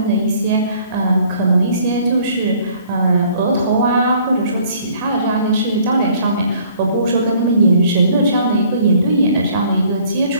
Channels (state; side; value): inverted; both; correlation -0.58